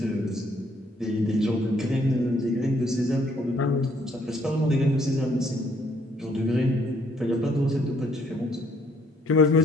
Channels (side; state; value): both; normal; correlation 0.66